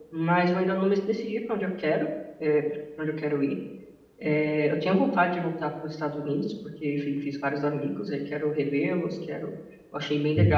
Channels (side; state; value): both; identical; correlation 1.00